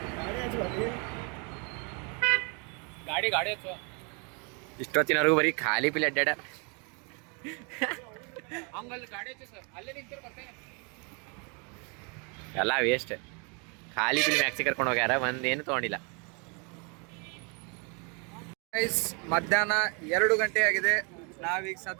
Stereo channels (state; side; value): quieter; left; 34.3 dB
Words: ಗಾಡಿ ಇಷ್ಟೊತ್ತಿನವರೆಗೂ ಬರೀ ಖಾಲಿ ಪಿಲ್ ಅಡ್ಡಾಡ. ಎಲ್ಲ ವೇಸ್ಟ್. ಖಾಲಿ ಪಿಲ್ ಮ್ಯಾಕ್ಸಿ ಕರ್ಕೊಂಡು ಹೋಗ್ಯಾರ, ಒಂದೇನು ತಗೊಂಡಿಲ್ಲ. ಮಧ್ಯಾಹ್ನ 2 ಗಂಟೆ ಆಗಿದೆ. ನಾವೀಗ